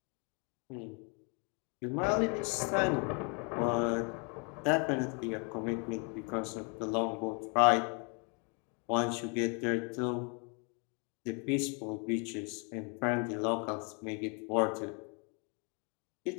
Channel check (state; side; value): quieter; right; 35.7 dB